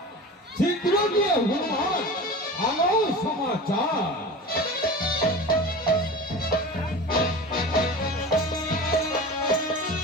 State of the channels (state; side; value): normal; both; correlation 0.33